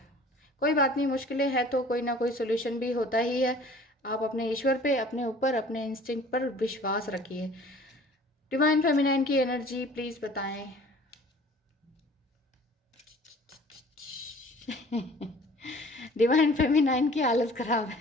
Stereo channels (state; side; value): normal; both; correlation 0.49